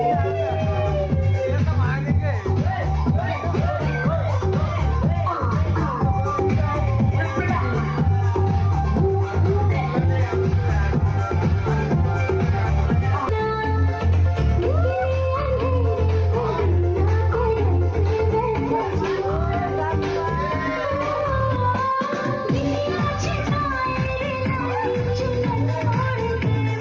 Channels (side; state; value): both; identical; correlation 1.00